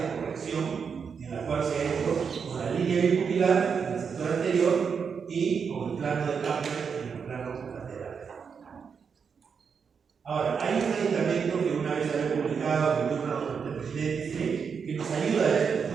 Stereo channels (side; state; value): left; quieter; 6.2 dB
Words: corrección en la cual se ha hecho con la línea bipupilar en el sector anterior y con el plano de Camper en el plano lateral. Ahora, hay un medicamento que una vez había publicado en el libro del presidente que nos ayuda a esto,